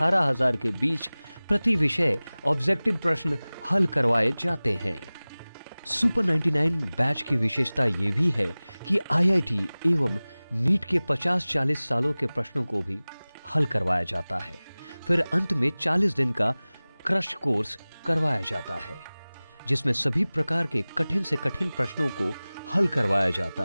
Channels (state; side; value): inverted; both; correlation -0.99